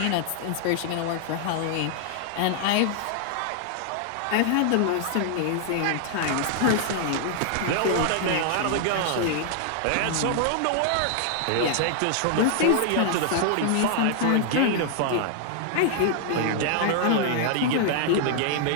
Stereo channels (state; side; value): different; both; correlation 0.00